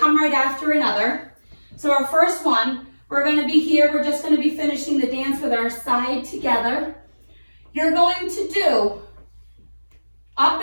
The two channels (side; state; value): both; inverted; correlation -1.00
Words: right after another. So our first one, we're going to be here. We're just going to be finishing the dance with our side together. You're going to do up